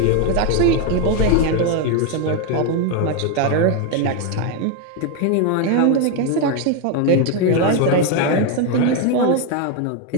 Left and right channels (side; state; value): both; different; correlation 0.02